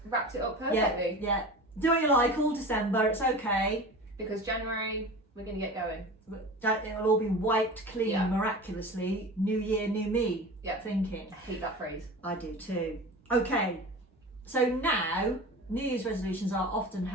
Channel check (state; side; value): normal; both; correlation 0.34